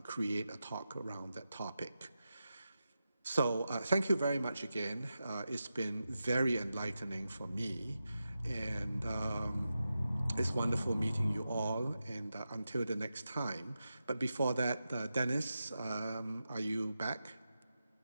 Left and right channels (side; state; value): both; inverted; correlation -0.91